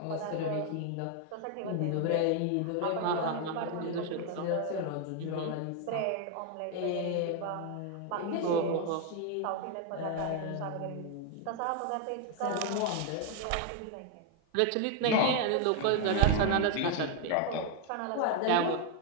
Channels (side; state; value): both; different; correlation 0.01